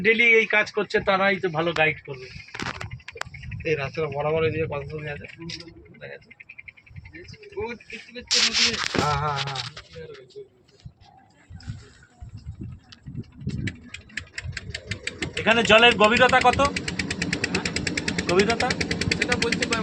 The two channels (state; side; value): identical; both; correlation 1.00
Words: ডেলি এই কাজ করছে তারাই তো ভালো গাইড করবে। এই রাস্তাটা বরাবর এদিকে কত জমি আছে দেখা যাচ্ছে। হ্যাঁ হ্যাঁ হ্যাঁ। এখানে জলের গভীরতা কত? গভীরতা সেটা বলতে